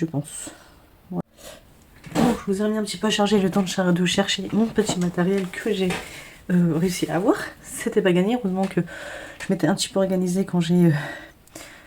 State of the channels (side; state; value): both; identical; correlation 1.00